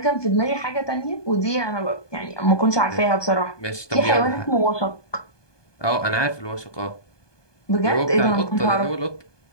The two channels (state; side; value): late; right; 1.2 ms